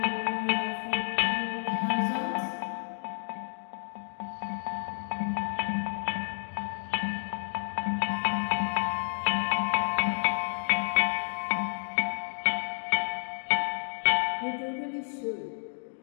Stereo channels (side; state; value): right; silent; digital silence